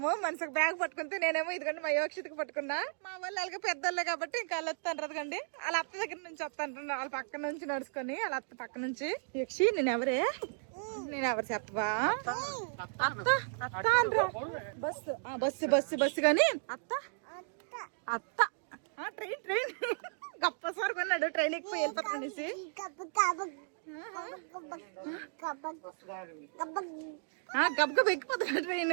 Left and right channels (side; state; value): left; silent; digital silence